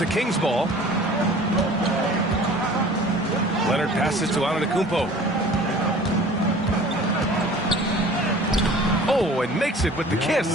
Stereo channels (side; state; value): both; normal; correlation 0.46